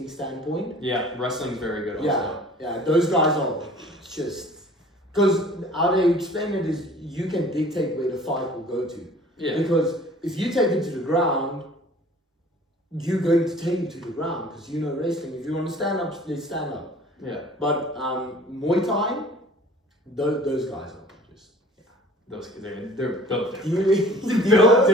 standpoint. Yeah, wrestling's very good also. Yeah, those guys are just... Because how they explain it is you can dictate where the fight will go to. Yeah. Because if you take it to the ground, you're going to take it to the ground because you know wrestling. If you want to stand up, they stand up. Yeah. But Muay Thai, those guys are just... Yeah. Those they're built different. Built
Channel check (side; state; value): both; normal; correlation 0.49